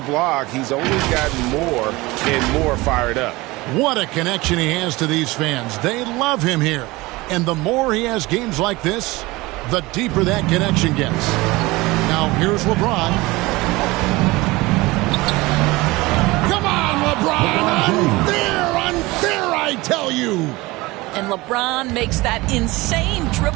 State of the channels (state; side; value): quieter; left; 21.4 dB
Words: he's only gotten more and more fired up. What a connection he has to these fans. They love him here. And the more he has games like this, the deeper that connection gets. Now, here's LeBron. Come on, LeBron! Unfair, I tell you! And LeBron makes that insane